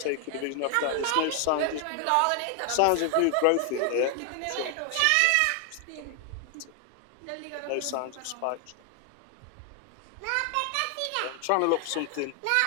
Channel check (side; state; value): both; different; correlation 0.00